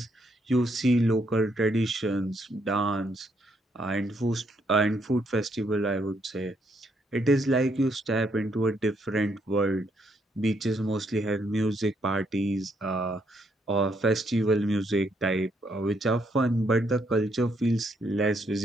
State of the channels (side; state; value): both; normal; correlation 0.74